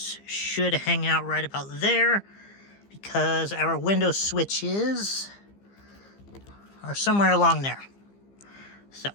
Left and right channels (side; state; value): right; late; 15 ms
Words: should hang out right about there because our window switches are somewhere along there. So